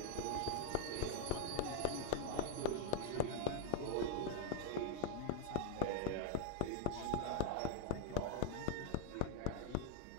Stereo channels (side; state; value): both; different; correlation 0.00